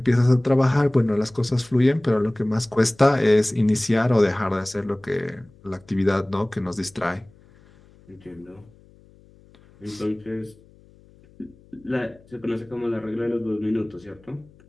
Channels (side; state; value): left; noise; hum, 27 dB below the sound